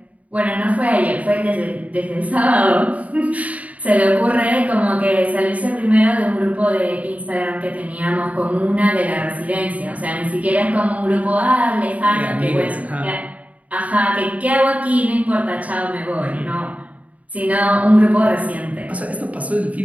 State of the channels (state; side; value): late; left; 0.069 ms